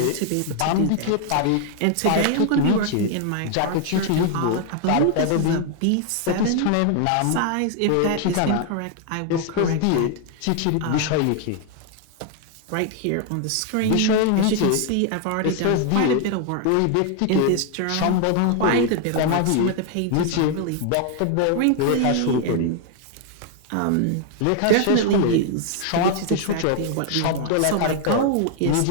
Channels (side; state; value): both; different; correlation 0.00